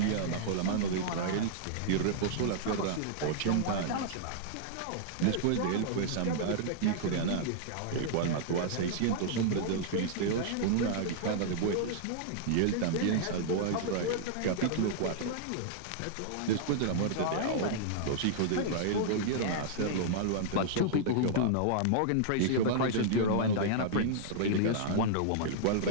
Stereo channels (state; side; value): different; both; correlation -0.01